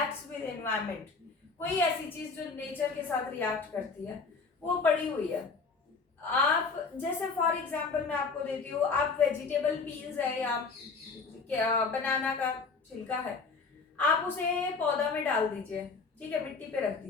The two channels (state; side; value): quieter; right; 4.6 dB